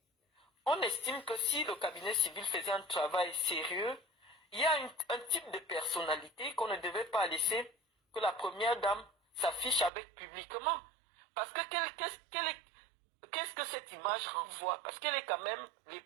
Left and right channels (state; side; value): drops out; left; at 9.9 s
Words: On estime que si le cabinet civil faisait un travail sérieux, il y a un type de personnalité qu'on ne devait pas laisser que la première dame s'affiche avec publiquement. Parce que qu'est-ce que cette image renvoie? Parce qu'elle est quand même